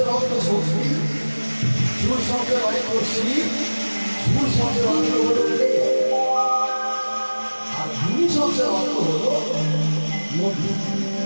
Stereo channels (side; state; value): both; inverted; correlation -1.00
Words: অর্থ শক্তি, সুর শব্দের অর্থ শিব, সুর শব্দের অর্থ হলো আর ধ্বনি শব্দের অর্থ হলো মধু।